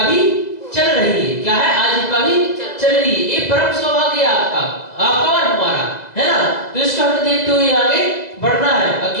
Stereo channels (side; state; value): right; late; 2.0 ms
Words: भी चल रही है। क्या है? आजीविका भी चल रही है। ये परम सौभाग्य है आपका और हमारा, है ना। तो इसको हमें देखते हुए आगे बढ़ना है।